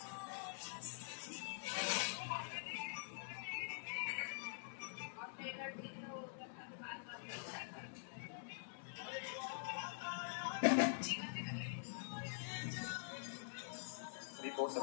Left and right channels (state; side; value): silent; right; digital silence